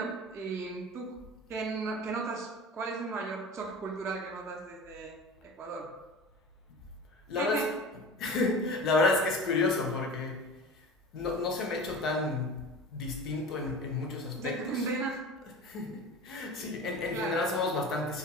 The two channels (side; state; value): both; normal; correlation 0.35